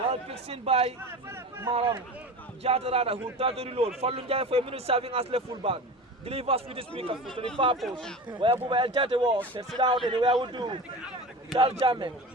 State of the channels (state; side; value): normal; both; correlation 0.31